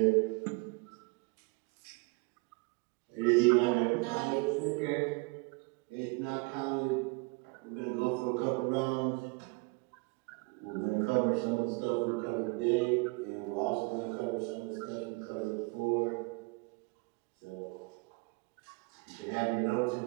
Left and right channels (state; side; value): quieter; left; 28.6 dB